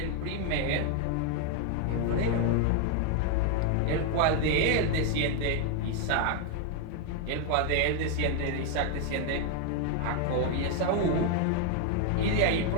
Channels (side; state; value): both; different; correlation 0.00